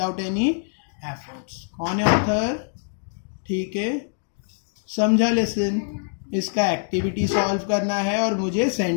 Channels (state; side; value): silent; right; digital silence